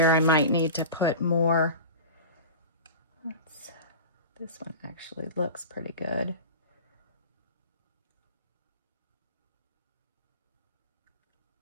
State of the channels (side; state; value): both; inverted; correlation -0.32